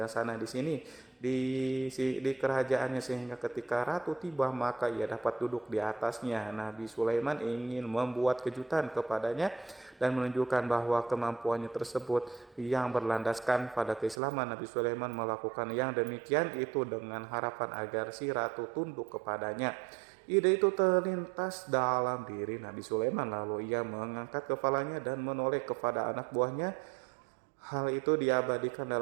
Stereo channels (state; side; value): drops out; left; at 14.2 s